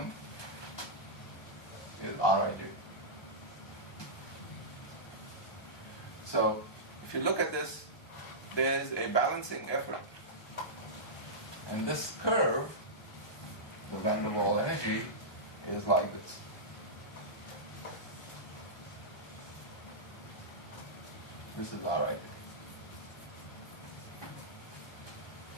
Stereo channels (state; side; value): late; right; 1.2 ms